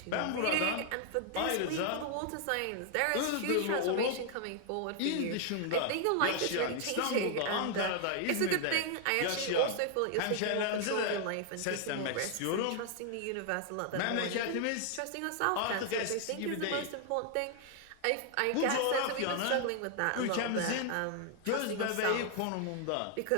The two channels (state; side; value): different; both; correlation 0.00